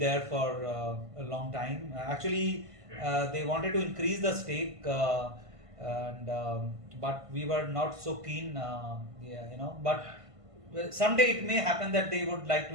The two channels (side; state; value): left; late; 1.5 ms